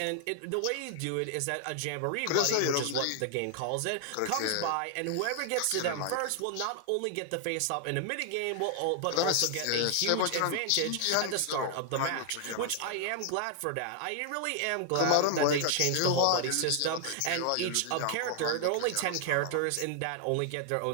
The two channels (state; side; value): different; both; correlation 0.00